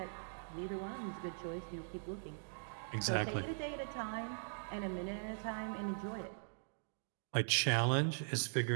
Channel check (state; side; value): silent; left; digital silence